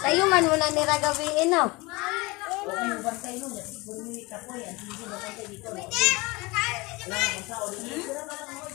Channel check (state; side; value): quieter; right; 24.1 dB